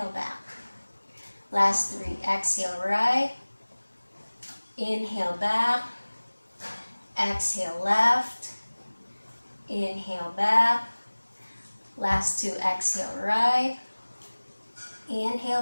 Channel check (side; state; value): both; inverted; correlation -1.00